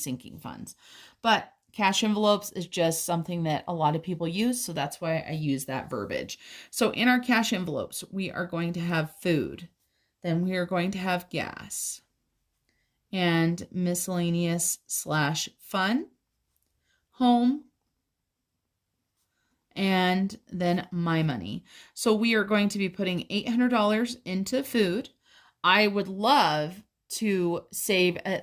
funds. But cash envelopes is just something that a lot of people use, so that's why I use that verbiage. So in our cash envelopes, we are going to have food. Then we are going to have gas and miscellaneous / fun, home, and then my money. So we are going to be putting $800 into food. I would love to save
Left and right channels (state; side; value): identical; both; correlation 1.00